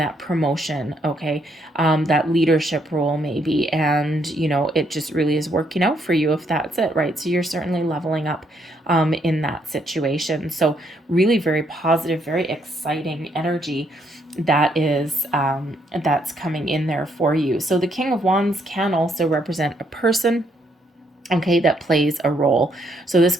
promotion. Okay. That leadership role maybe. And, it just really is working out for you if that's it, right? So you're certainly leveling up in that situation. So really very positive, very exciting energy that is that's coming in there for you. So the King of Wands can also represent a person, okay, that plays a role. So this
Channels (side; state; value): both; normal; correlation 0.73